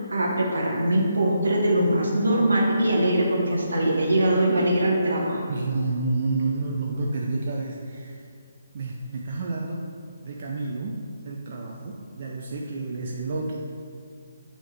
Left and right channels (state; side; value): inverted; both; correlation -0.79